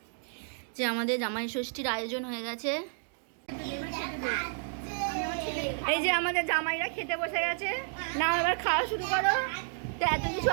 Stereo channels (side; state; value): left; silent; 57 dB below the other